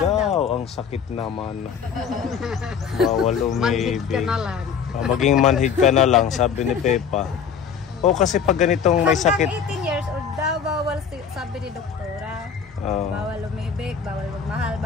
daw. Ang sakit naman. Bawal umibig. Manhid ka na lang. Maging manhid ka na lang, sabi ni Pepa. Kasi pag ganitong may sakit. Hanggang 18 years old daw, bawal sabi ni doktora. Bawal umibig, bawal magmahal,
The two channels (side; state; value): right; quieter; 6.9 dB